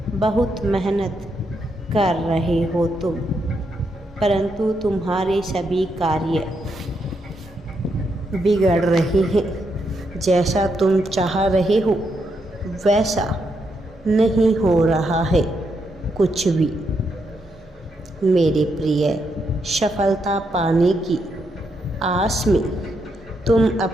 बहुत मेहनत कर रहे हो तुम, परंतु तुम्हारे सभी कार्य बिगड़ रहे हैं। जैसा तुम चाह रहे हो वैसा नहीं हो रहा है कुछ भी। मेरे प्रिय, सफलता पाने की आस में तुम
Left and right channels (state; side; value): normal; both; correlation 0.80